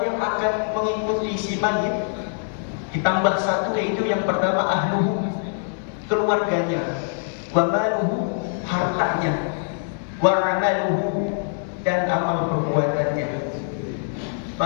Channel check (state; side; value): silent; right; 60 dB below the other